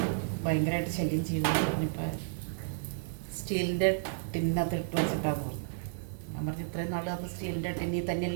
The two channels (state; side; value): silent; left; 56 dB below the other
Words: ഭയങ്കരമായിട്ട് ശല്യം ചെയ്യുമെന്ന് പറഞ്ഞപ്പോൾ സ്റ്റീലിൻ്റെ ടിന്നകത്ത് ഇട്ട് വെച്ചിട്ടാന്ന് പറഞ്ഞു. ഞാൻ പറഞ്ഞു ഇത്രയും നാൾ അത് സ്റ്റീലിൻ്റെ ടിന്നിൽ